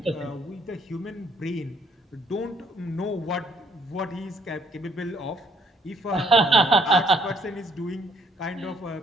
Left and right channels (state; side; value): normal; both; correlation 0.65